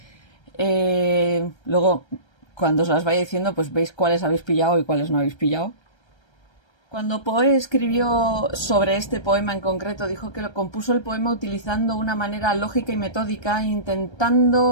Luego, cuando os las vaya diciendo, pues veis cuáles habéis pillado y cuáles no habéis pillado. Cuando Poe escribió sobre este poema en concreto, dijo que lo compuso el poema utilizando una manera lógica y metódica,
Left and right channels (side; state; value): right; late; 1.3 ms